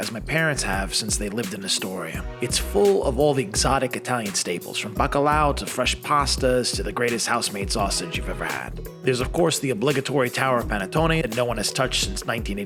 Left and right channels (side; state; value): both; identical; correlation 1.00